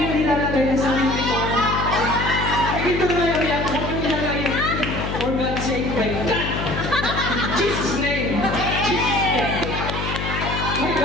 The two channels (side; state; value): left; noise; hum, 4 dB below the sound